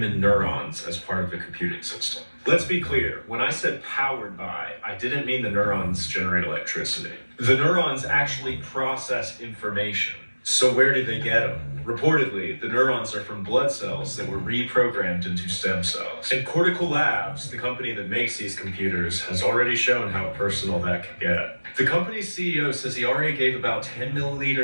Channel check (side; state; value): both; inverted; correlation -1.00